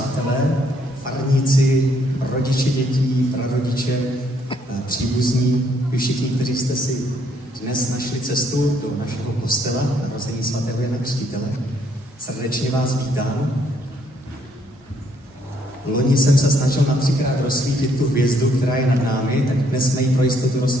farníci, rodiče dětí, prarodiče, příbuzní, vy všichni, kteří jste si dnes našli cestu do našeho kostela narození svatého Jana Křtitele. Srdečně vás vítám. Loni jsem se snažil na 3krát rozsvítit tu hvězdu, která je nad námi, tak dnes jsme ji pro jistotu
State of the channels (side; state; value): both; normal; correlation 0.69